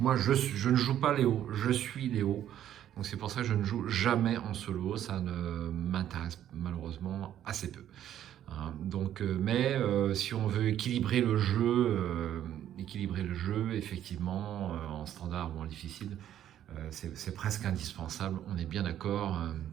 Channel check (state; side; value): quieter; left; 11.2 dB